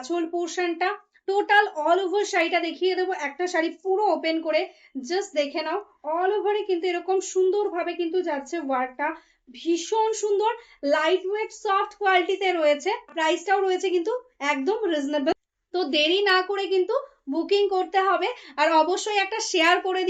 পোর্শনটা। টোটাল অল ওভার শাড়িটা দেখিয়ে দেবো, একটা শাড়ি পুরো ওপেন করে জাস্ট দেখে নাও। অল ওভারে কিন্তু এরকম সুন্দরভাবে কিন্তু যাচ্ছে ওয়ার্কটা, ভীষণ সুন্দর, লাইট ওয়েট সফট কোয়ালিটিতে রয়েছে। প্রাইসটাও রয়েছে কিন্তু একদম রিজনেবল। তো দেরি না করে কিন্তু বুকিং করতে হবে, আর অবশ্যই একটা শেয়ার করে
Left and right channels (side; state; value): both; identical; correlation 1.00